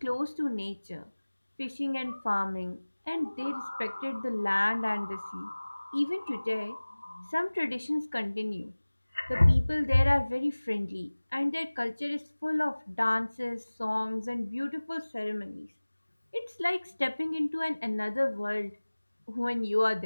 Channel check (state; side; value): inverted; both; correlation -1.00